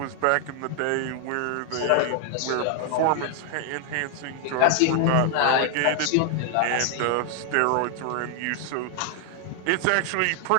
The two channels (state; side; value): different; both; correlation 0.00